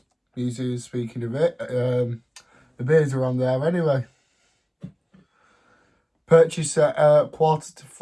Museum, speaking of it. The beers are on there anyway. Purchased at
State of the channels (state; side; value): identical; both; correlation 1.00